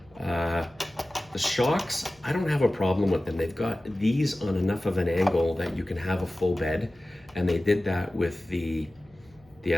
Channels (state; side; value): noise; left; hum, 28 dB below the sound